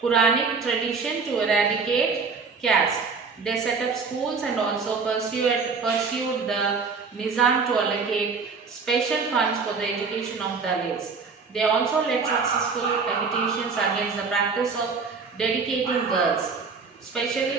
Quranic tradition to eradicate caste. They set up schools and also pursued the Nizam to allocate special funds for the education of Dalits. They also led successful agitations against the practice of dedicating girls,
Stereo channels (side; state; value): left; quieter; 4.9 dB